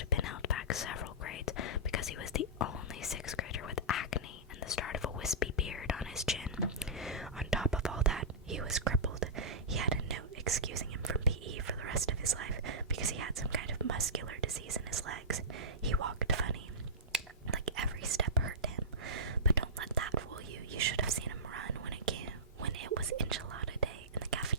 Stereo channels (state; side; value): normal; both; correlation -0.17